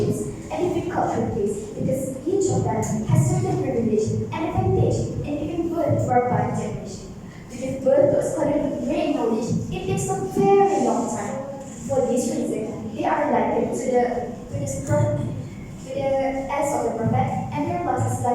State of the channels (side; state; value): both; identical; correlation 1.00